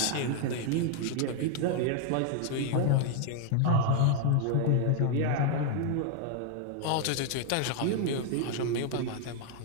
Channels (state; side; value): different; both; correlation 0.00